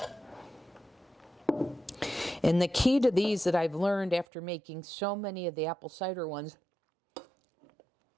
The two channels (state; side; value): drops out; left; at 4.2 s